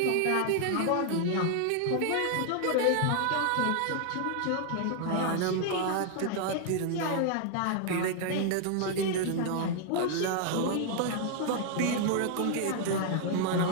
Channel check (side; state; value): both; different; correlation 0.00